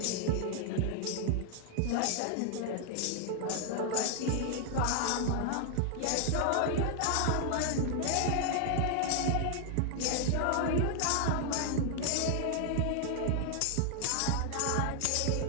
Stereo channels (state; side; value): different; both; correlation 0.00